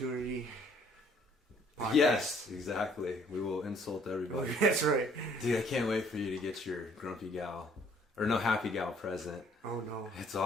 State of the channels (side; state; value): both; normal; correlation 0.61